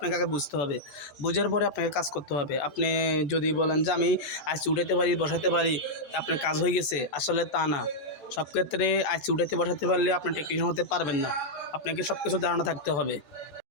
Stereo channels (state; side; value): late; right; 14 ms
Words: আগে বুঝতে হবে। বোঝার পরে আপনাকে কাজ করতে হবে। আপনি যদি বলেন যে আমি আইসি উঠাতে পারি, বসাতে পারি, আপনার কাজ হয়ে গেছে, আসলে তা না। সব ক্ষেত্রে আইসি উঠাতে বসাতে পারলে আপনি টেকনিশিয়ান হতে পারবেন না। আপনাকে সব কিছু ধারণা থাকতে হবে।